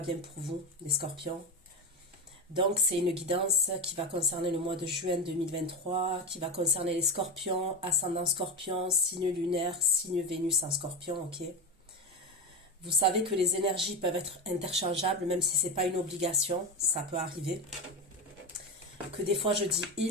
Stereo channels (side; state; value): both; normal; correlation 0.18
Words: pour vous, les scorpions. Donc c'est une guidance qui va concerner le mois de juin 2023, qui va concerner les scorpions, ascendant scorpion, signe lunaire, signe Vénus en scorpion, ok? Vous savez que les énergies peuvent être interchangeables, même si ce n'est pas une obligation, ça peut arriver. Que des fois je dis